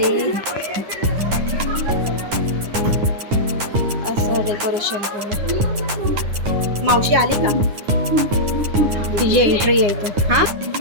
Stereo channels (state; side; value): late; left; 9.7 ms